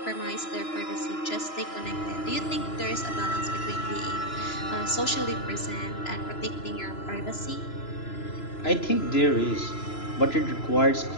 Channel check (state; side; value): late; right; 3.0 ms